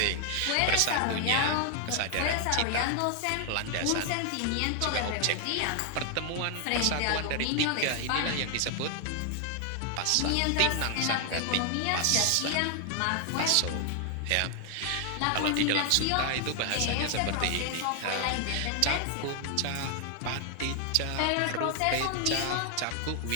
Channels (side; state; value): both; different; correlation 0.00